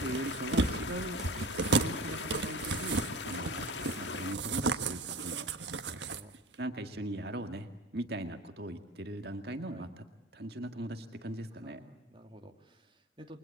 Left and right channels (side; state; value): both; normal; correlation 0.35